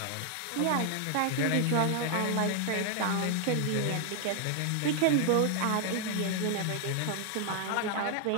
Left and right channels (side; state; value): both; different; correlation 0.00